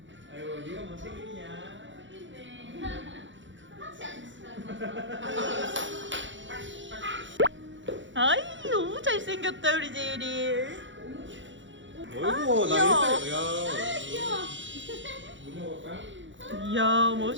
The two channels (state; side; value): late; left; 0.55 ms